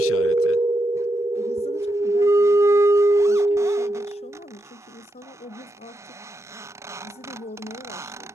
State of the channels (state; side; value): normal; both; correlation 0.84